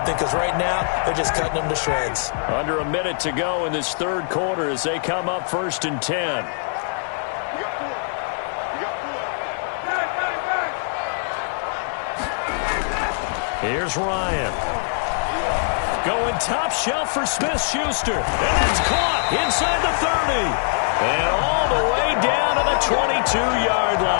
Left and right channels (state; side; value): silent; right; digital silence